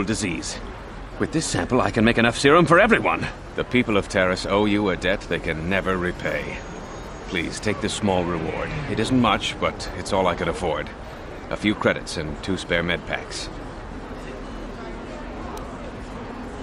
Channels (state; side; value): identical; both; correlation 1.00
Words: disease. With this sample, I can make enough serum for everyone. The people of Terrace owe you a debt they can never repay. Please, take this small reward. It isn't much, but it's all I could afford. A few credits and 2 spare med packs.